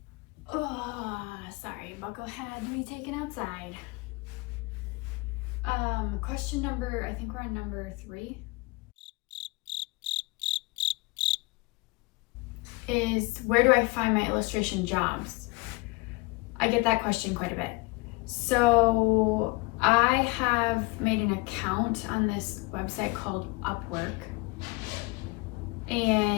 Oh, sorry, Buckle had to be taken outside. Question number, I think we're on number 3. Is where do I find my illustration jobs? I get that question quite a bit. So I have made an account on this website called Upwork,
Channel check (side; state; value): right; quieter; 25.3 dB